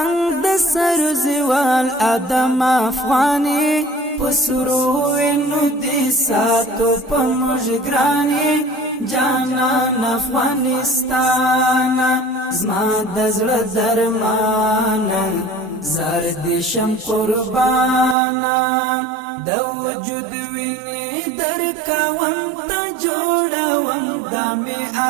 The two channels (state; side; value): drops out; left; at 18.2 s